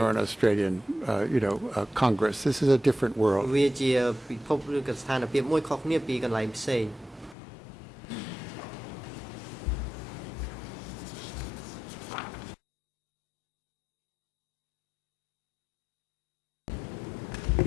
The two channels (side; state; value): right; drops out; at 7.4 s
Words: an Australian, Congress. This is a different world.